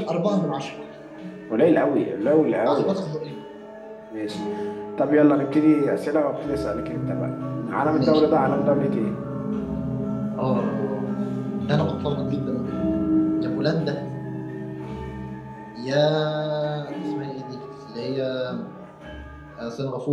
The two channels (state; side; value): identical; both; correlation 1.00